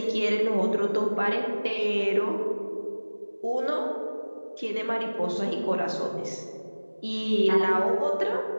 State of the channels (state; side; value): inverted; both; correlation -1.00